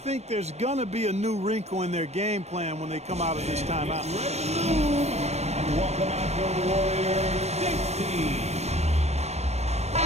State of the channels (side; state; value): left; late; 0.31 ms